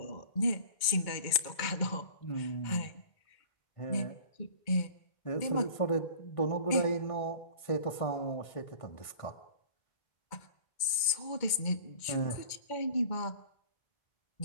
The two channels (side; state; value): right; late; 2.1 ms